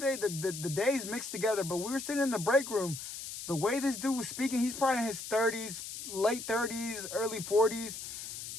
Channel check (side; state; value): left; noise; hiss, 8 dB below the sound